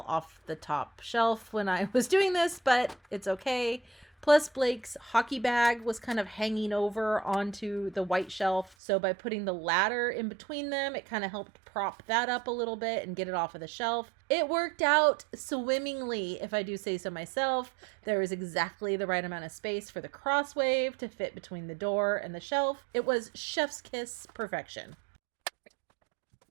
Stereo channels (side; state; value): left; drops out; at 8.8 s